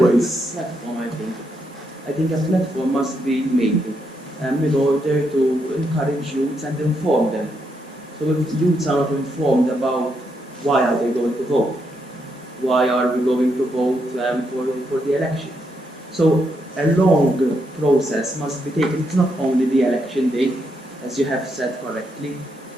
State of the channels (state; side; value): normal; both; correlation 0.79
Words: platform, I think. I think a platform must be made in order to encourage youths and inform them. So if youths are not informed about why are they going to vote, why are we going to vote for the election? So a long process must be taken. It's not only the election day, as you have said correctly.